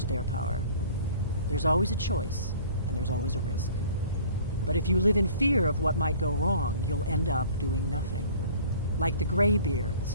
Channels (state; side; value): inverted; both; correlation -0.49